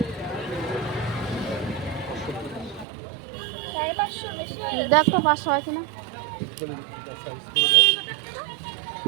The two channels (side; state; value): left; drops out; at 2.9 s